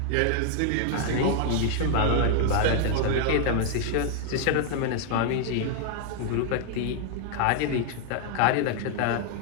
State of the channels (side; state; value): both; different; correlation 0.00